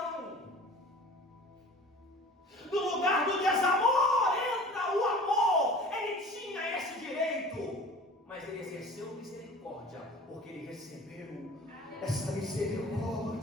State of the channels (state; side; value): normal; both; correlation 0.43